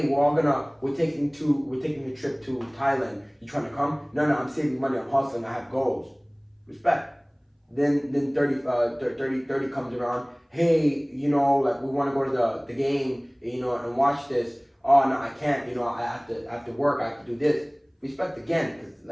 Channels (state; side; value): identical; both; correlation 1.00